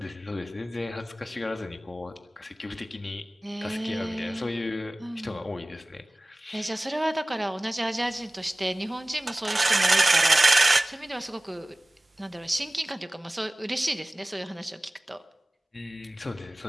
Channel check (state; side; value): normal; both; correlation 0.98